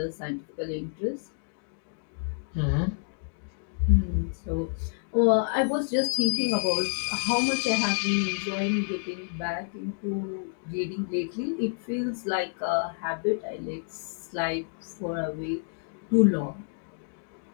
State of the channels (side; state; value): right; silent; digital silence